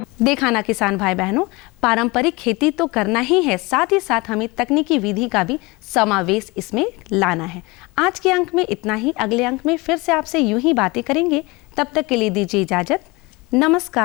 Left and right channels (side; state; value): right; quieter; 24.5 dB